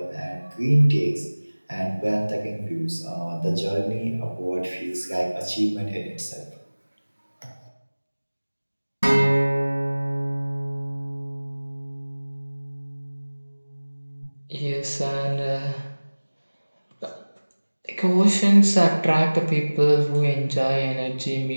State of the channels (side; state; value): both; inverted; correlation -1.00